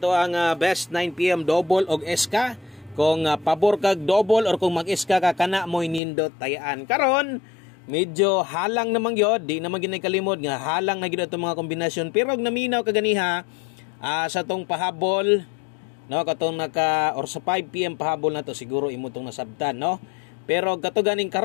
ang best 9 PM double og SK. Kung pabor kag double or kung mag-SK ka kana mo nindot tayaan. Karon, medyo halang naman gyud, di naman ginay kalimod nga halang na gyud ato mga kombinasyon pero og naminaw kaganiha sa tong pahabol. No, katong or sa 5 PM pahabol na to siguro imo tong nasabtan, no? Pero kato ganing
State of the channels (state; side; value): drops out; right; at 6.0 s